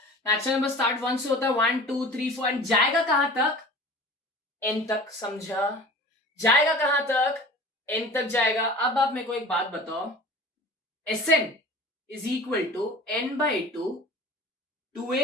नेचुरल नंबर स्टार्ट 1 से होता है, 1 2 3 4 एंड जाएगा कहां तक n तक। समझा, जाएगा कहां तक n तक जाएगा। अब आप मेरे को एक बात बताओ, Sn is equal to n/2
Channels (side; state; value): both; normal; correlation 0.41